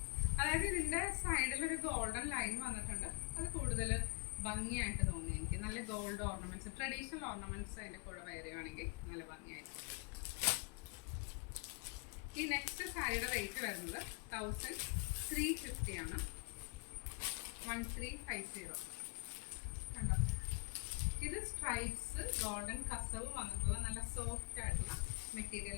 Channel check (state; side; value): quieter; right; 33.3 dB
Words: അതായത് ഇതിൻ്റെ സൈഡിലൊരു ഗോൾഡൻ ലൈൻ വന്നിട്ടുണ്ട്. അത് കൂടുതൽ ഭംഗിയായിട്ട് തോന്നി എനിക്ക്. നല്ല ഗോൾഡ് ഓർണമെൻറ്റ്സ്, ട്രഡീഷണൽ ഓർണമെൻറ്റ്സ് അതിൻ്റെ കൂടെ വെയർ ചെയ്യുകയാണെങ്കിൽ നല്ല ഭംഗിയായിട്ട്. ഈ നെക്സ്റ്റ് സാരിയുടെ റേറ്റ് വരുന്നത് 1350 ആണ്. 1350 കണ്ടോ. ഇത് സ്ട്രൈപ്സ് ഗോൾഡൻ കസവ് വന്നിട്ടുള്ള നല്ല സോഫ്റ്റ് ആയിട്ടുള്ള